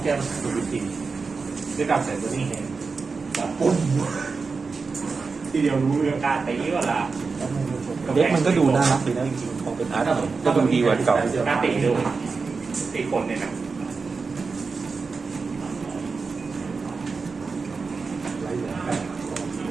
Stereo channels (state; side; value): quieter; left; 4.6 dB